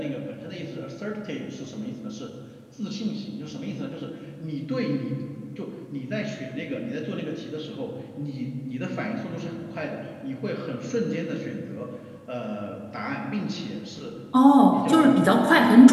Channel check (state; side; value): identical; both; correlation 1.00